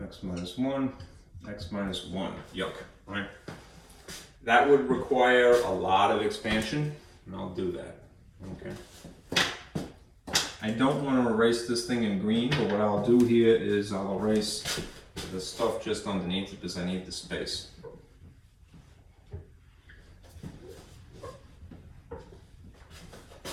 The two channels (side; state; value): both; identical; correlation 1.00